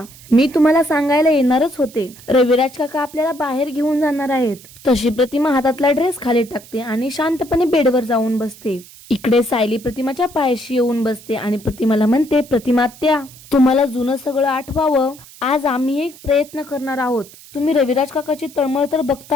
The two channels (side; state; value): right; noise; hiss, 21 dB below the sound